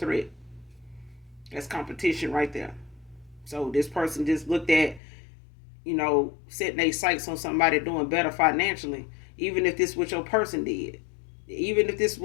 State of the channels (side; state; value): right; drops out; at 5.0 s